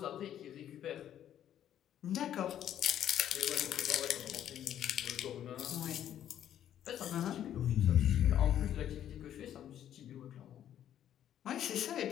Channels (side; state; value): right; quieter; 10.8 dB